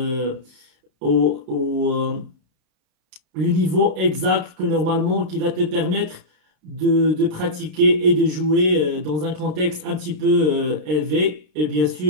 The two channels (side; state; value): left; late; 32 ms